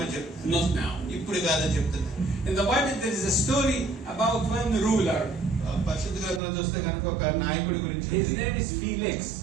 చెప్తున్నారు. not now. ఇప్పుడు కాదని చెప్తున్నారు. In the Bible, there is a story about one ruler. పరిశుద్ధ గ్రంథంలో చూస్తే కనుక ఒక నాయకుడి గురించి His ఉంది. name is Felix.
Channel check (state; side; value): drops out; left; at 6.4 s